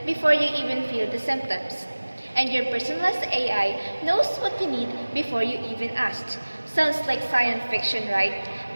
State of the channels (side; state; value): both; inverted; correlation -1.00